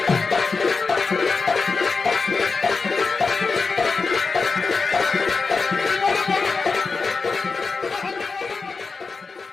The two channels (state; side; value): quieter; right; 4.5 dB